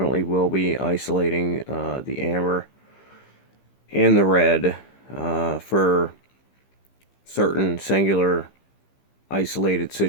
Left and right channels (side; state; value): right; late; 15 ms